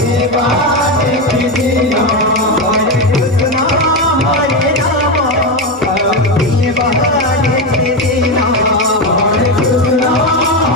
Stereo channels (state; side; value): normal; both; correlation 0.12